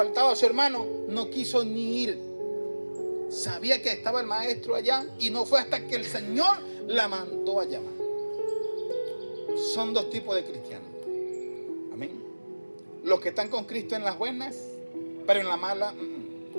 a su hermano, no quiso ni ir. Sabía que estaba el maestro allá y no fue hasta que el Señor la mandó a llamar. Son dos tipos de cristianos. Amén. Los que están con Cristo en las buenas, pero en las malas.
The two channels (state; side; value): inverted; both; correlation -1.00